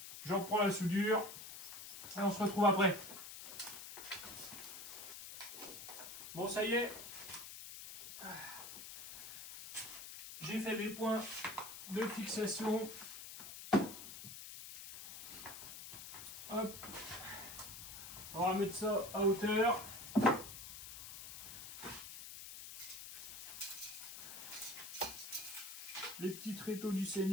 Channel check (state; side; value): noise; left; hiss, 10 dB below the sound